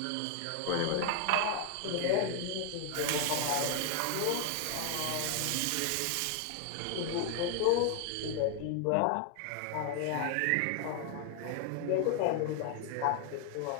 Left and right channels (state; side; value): different; both; correlation 0.00